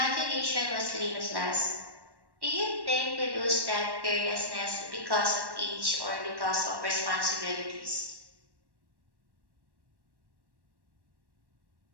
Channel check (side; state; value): left; late; 1.1 ms